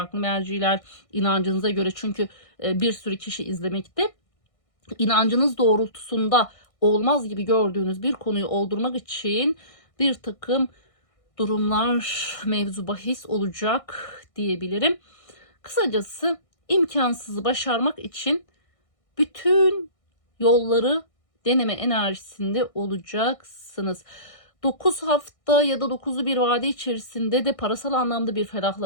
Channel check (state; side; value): late; right; 1.6 ms